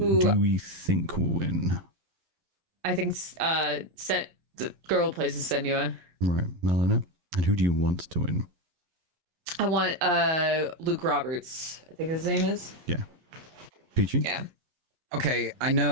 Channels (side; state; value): left; late; 11 ms